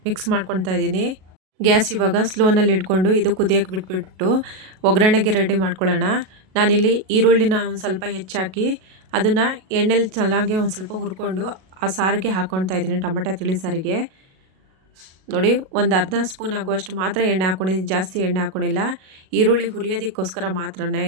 ಮಿಕ್ಸ್ ಮಾಡ್ಕೊತಾ ಇದ್ದೀನಿ. ಗ್ಯಾಸ್ ಇವಾಗ ಸ್ಲೋನಲ್ಲಿ ಇಟ್ಕೊಂಡು ಇದು ಕುದಿಯೋಕ್ಕೆ ಬಿಟ್ಬಿಟ್ಟು ಒಗ್ಗರಣೆಗೆ ರೆಡಿ ಮಾಡ್ಕೊಳ್ಳೋಣ. ನಾನಿಲ್ಲಿ ಈರುಳ್ಳಿನ ಒಂದು ಸ್ವಲ್ಪ ಹೆಚ್ಚಾಕಿ ಅದನ್ನು ಎಣ್ಣೆಲಿ ಚೆನ್ನಾಗಿ ಒಂದು ಸ್ವಲ್ಪ ಹುರ್ಕೊಂಡು ಆ ಸಾರಿಗೆ ಹಾಕ್ಕೊಳ್ತಾ ಇದ್ದೀನಿ. ಟೊಮೆಟೊ ತಿಳಿ ಸಾರಿಗೆ ನೋಡಿ ಒಂದು ಅರ್ಧ ಸ್ಪೂನ್ ಆಗುವಷ್ಟು ಮಾತ್ರ ಎಣ್ಣೆ ಹಾಕ್ಕೊಂಡಿದ್ದೀನಿ, ಜಾಸ್ತಿ ಎಣ್ಣೆ ಹಾಕ್ಕೊಂಡಿಲ್ಲ. ಈರುಳ್ಳಿ ಹುರಿಯೋದಕ್ಕೋಸ್ಕರ ಮಾತ್ರನೇ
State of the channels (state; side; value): late; left; 37 ms